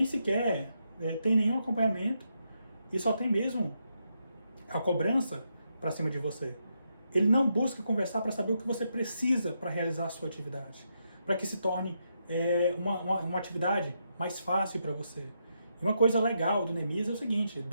sequer tem nenhum acompanhamento e só tem mesmo a cobrança para cima de você. Ele não busca conversar para saber o que você precisa para realizar a sua atividade, para que se torne uma atividade mais fácil para você. E uma coisa legal do Neemias é o seguinte,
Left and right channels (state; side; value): inverted; both; correlation -0.82